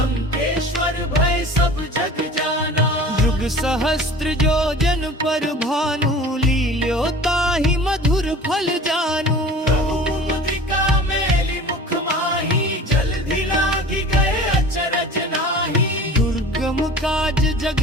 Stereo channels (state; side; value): normal; both; correlation 0.41